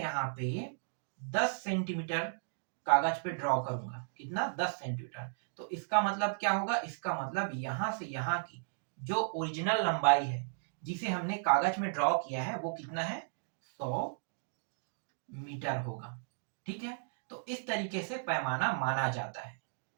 पे 10 सेंटीमीटर कागज पे ड्रॉ करूंगा, कितना, 10 सेंटीमीटर, तो इसका मतलब क्या होगा, इसका मतलब यहां से यहां की जो ओरिजिनल लंबाई है जिसे हमने कागज में ड्रॉ किया है वो कितना है, 100 मीटर होगा। ठीक है, तो इस तरीके से पैमाना माना जाता है,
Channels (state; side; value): silent; left; digital silence